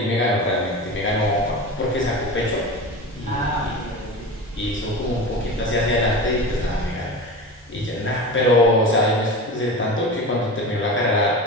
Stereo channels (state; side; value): normal; both; correlation 0.29